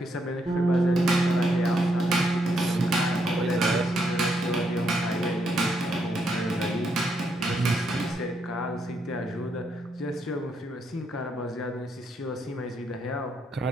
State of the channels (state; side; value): normal; both; correlation 0.77